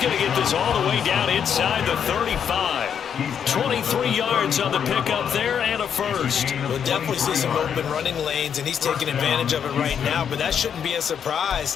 to get this all the way down inside the 35. 23 yards on the pickup there and a first. We'll definitely see some open running lanes, and he's taking advantage of it right now, but that shouldn't be a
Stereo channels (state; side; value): quieter; right; 8.0 dB